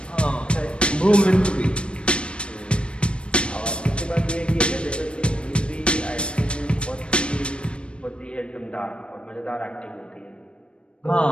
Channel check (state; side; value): late; right; 0.058 ms